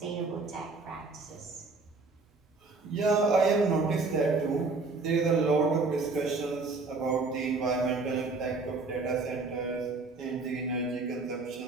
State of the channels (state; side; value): quieter; left; 3.8 dB